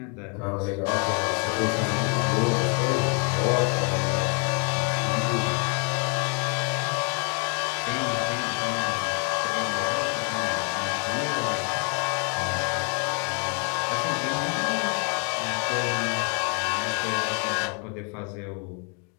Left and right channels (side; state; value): right; quieter; 37.5 dB